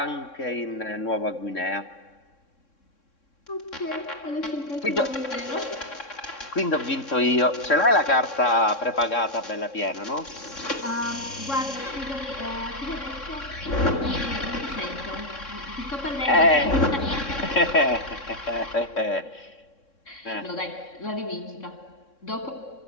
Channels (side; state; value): right; late; 3.6 ms